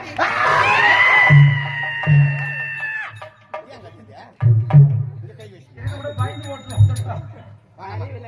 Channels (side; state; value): both; identical; correlation 1.00